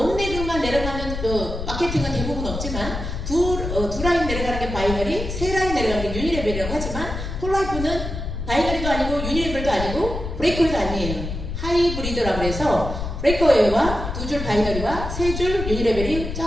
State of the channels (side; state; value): left; noise; rumble, 6 dB below the sound